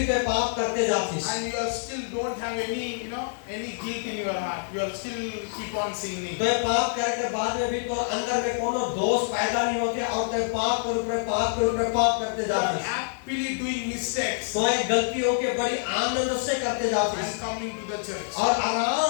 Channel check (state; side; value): silent; right; digital silence